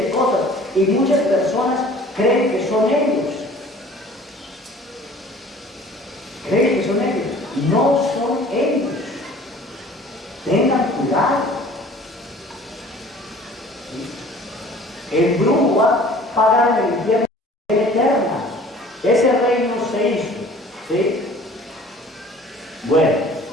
cosas. Y muchas personas creen que son ellos. Creen que son ellos. No son ellos. Tengan cuidado. El brujo va a pagar en el infierno eterna. Ese reino se hizo. ¿Sí? Bueno,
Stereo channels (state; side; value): normal; both; correlation 0.49